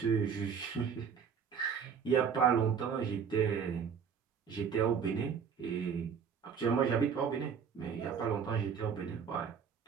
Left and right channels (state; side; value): quieter; left; 6.9 dB